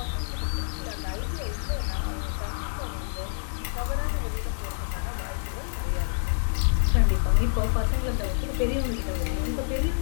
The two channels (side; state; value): right; silent; digital silence